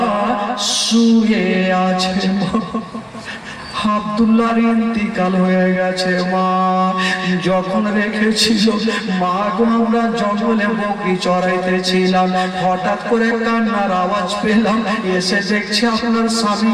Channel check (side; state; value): both; identical; correlation 1.00